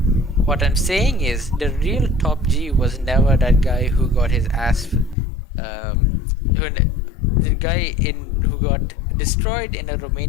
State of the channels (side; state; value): right; drops out; at 5.2 s